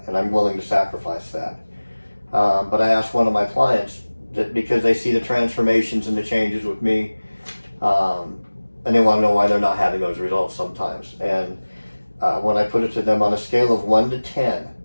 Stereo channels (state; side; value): inverted; both; correlation -1.00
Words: and I'm willing to sacrifice that. But I asked one of my clients, that because they see the transformations and the changes with me, and they want to know why they're not having those results sometimes. And when I put it to them on a scale of 1 to 10,